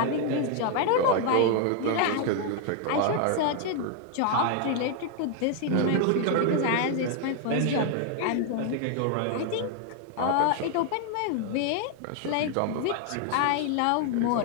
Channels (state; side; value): different; both; correlation 0.00